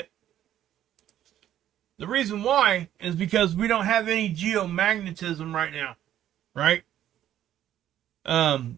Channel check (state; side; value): quieter; left; 11.5 dB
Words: The reason why is because we don't have any geomagnetism right now, right?